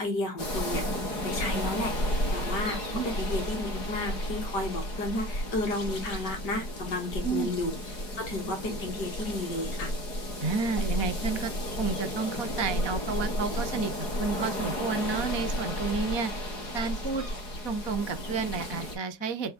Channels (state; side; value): late; right; 4.8 ms